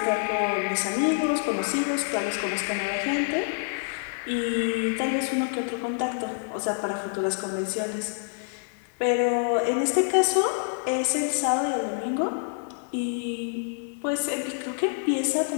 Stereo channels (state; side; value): silent; right; 60 dB below the other